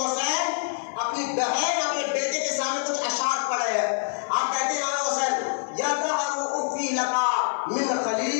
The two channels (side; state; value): right; silent; digital silence